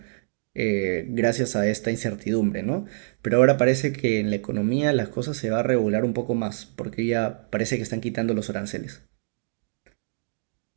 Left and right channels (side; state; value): left; silent; digital silence